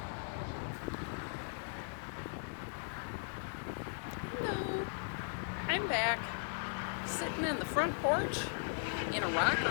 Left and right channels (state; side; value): silent; right; digital silence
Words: Hello, I'm back, sitting in the front porch in a